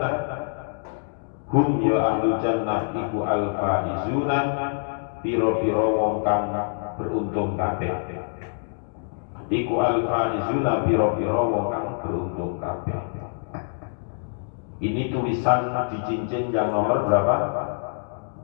hum ya ahlul jannah iku al faizuna pira-pira wong kang beruntung kabeh. Iku al faizuna pira-pira wong kang beruntung kabeh. Ini tulisan di cincin yang nomor berapa?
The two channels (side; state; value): right; silent; digital silence